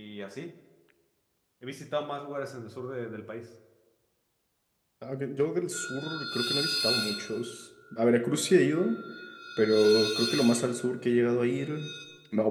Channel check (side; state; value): both; identical; correlation 1.00